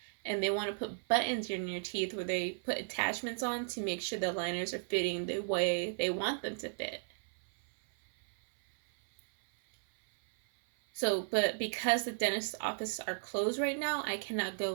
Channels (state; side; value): silent; left; 55 dB below the other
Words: And they want to put buttons in your teeth where they put attachments on to make sure the liners are fitting the way they want them to fit. So, but because the dentist's offices are closed right now, I cannot